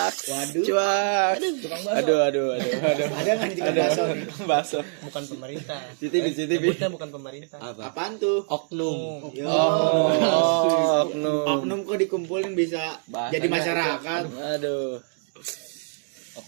Waduh. Cuak. Aduh. Ada nggak nih tiga bakso nih? Baso. Bukan pemerintah. CCTV. Sebutnya bukan pemerintah. Apa? Apaan tuh? Oknum. Yo. Oknum. Oknum kok dikumpulin bisa Bahasanya jadi masyarakat. Aduh.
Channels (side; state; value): left; silent; digital silence